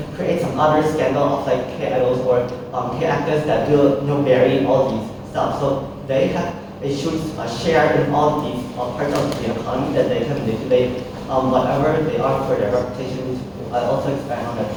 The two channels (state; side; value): identical; both; correlation 1.00